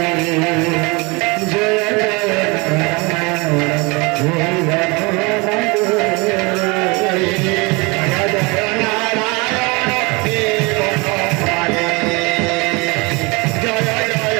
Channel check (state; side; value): quieter; left; 27.1 dB